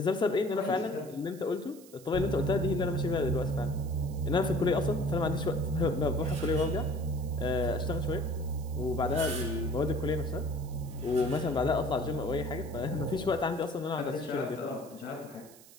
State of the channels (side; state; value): right; noise; hiss, 22 dB below the sound